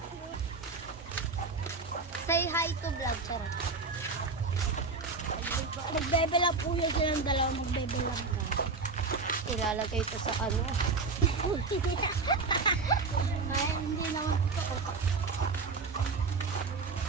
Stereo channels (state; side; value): quieter; left; 4.2 dB